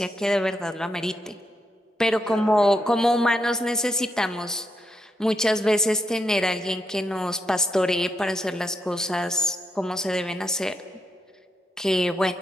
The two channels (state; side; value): normal; both; correlation 0.81